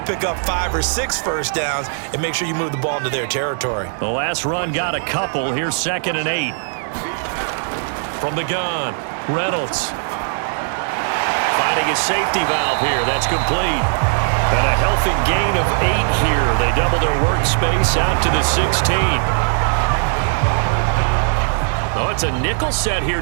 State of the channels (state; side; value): silent; left; digital silence